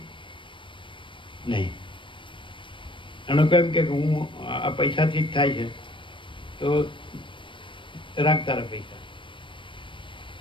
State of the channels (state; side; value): late; right; 0.24 ms